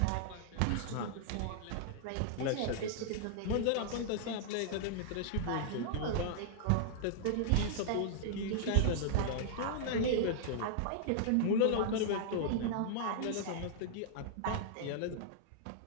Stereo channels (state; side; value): different; both; correlation -0.01